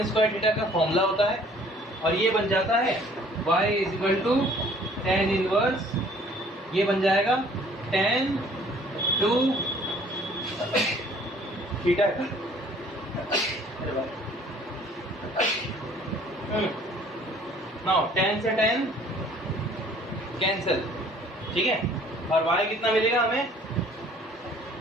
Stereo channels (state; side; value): normal; both; correlation 0.55